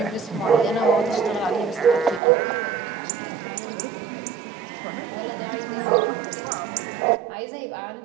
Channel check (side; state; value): left; drops out; at 2.2 s